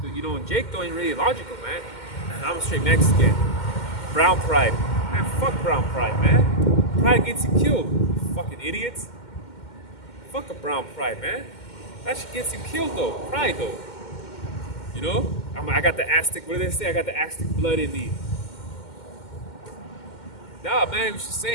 You know, and Jake though ain't really logical, man. I'm a straight Mexican. Brown pride, man. Fuck brown pride, man. Pride gets you killed, you fucking idiots. Fuck a brown pride, man. That shit gets you killed though. Pride though. You know? I got the Aztec. What do they say? I got the Aztec blood in me. Nah, man. You should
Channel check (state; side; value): late; right; 2.1 ms